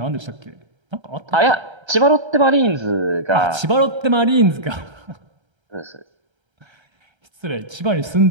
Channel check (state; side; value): late; left; 1.3 ms